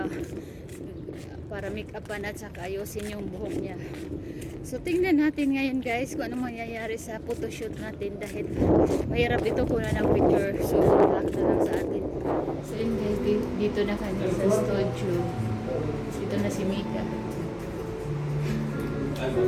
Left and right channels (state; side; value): identical; both; correlation 1.00